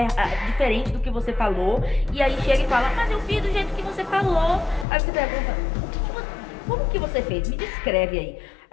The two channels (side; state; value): right; drops out; at 4.9 s